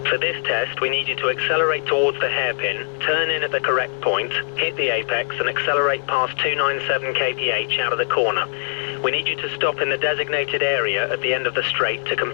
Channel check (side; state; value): right; silent; digital silence